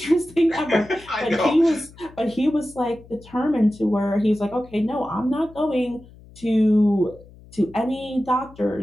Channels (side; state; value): left; noise; hum, 22 dB below the sound